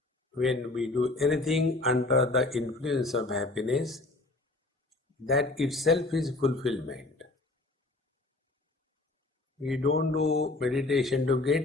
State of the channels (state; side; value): quieter; right; 3.0 dB